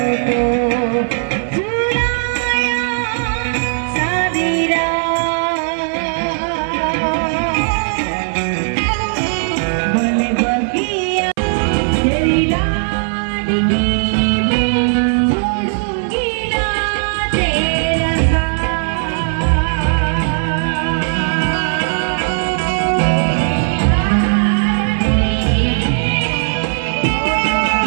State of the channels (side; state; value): left; silent; 62 dB below the other